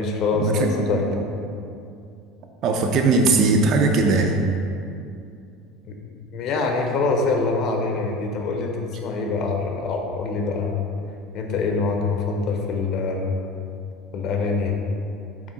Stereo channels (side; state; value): both; normal; correlation 0.32